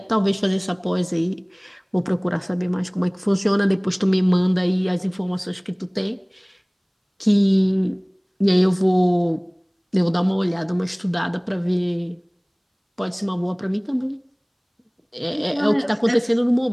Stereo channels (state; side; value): identical; both; correlation 1.00